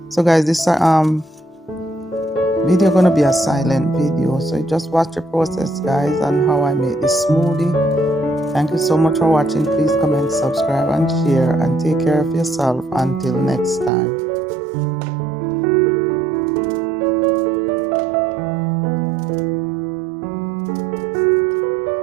so guys, this video gonna be a silent video, so just watch the process guys and how I make this smoothie. Thank you so much for watching. Please comment, subscribe and share, and take care of yourself until next time.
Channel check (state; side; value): drops out; left; at 13.9 s